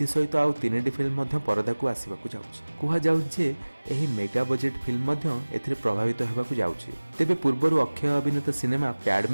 सहित आउ 3टी फिल्म परदा को आसवाक जाउछि। एही मेगा बजेट फिल्म एथिरे प्रभावित होबाक जाउछि। तेबे पूर्वरु अक्षय अभिनीत सिनेमा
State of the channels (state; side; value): inverted; both; correlation -1.00